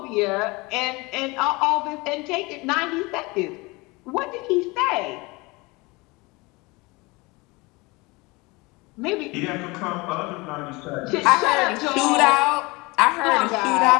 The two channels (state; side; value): quieter; right; 24.6 dB